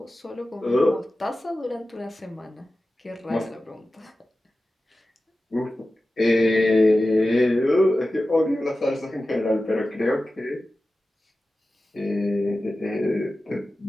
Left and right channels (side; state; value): both; normal; correlation 0.95